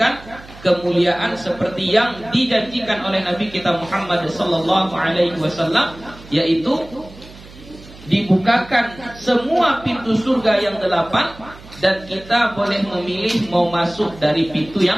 kemuliaan seperti yang dijanjikan oleh Nabi kita Muhammad sallallahu alaihi wasallam, yaitu dibukakan semua pintu surga yang 8 dan kita boleh memilih mau masuk dari pintu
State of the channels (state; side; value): noise; right; hum, 19 dB below the sound